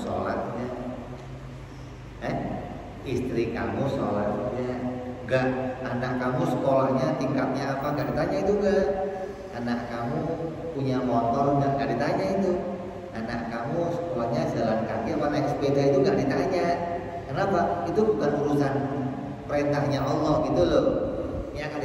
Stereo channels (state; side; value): identical; both; correlation 1.00